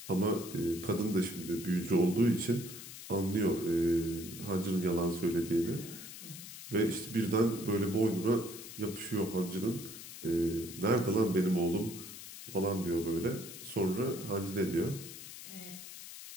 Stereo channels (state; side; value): noise; left; hiss, 12 dB below the sound